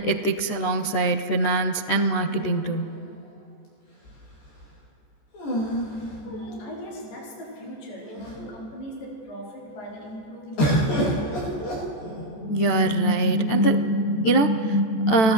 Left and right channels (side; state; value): right; late; 14 ms